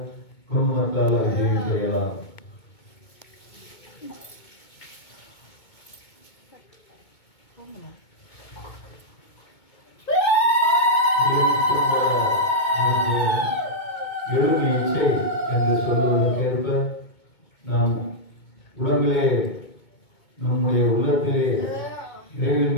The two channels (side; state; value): right; late; 2.2 ms